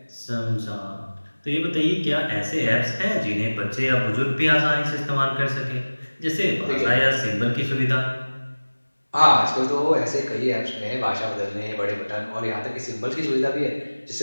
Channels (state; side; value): inverted; both; correlation -1.00